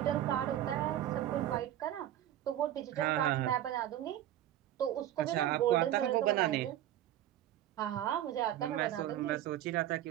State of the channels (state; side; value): quieter; left; 12.3 dB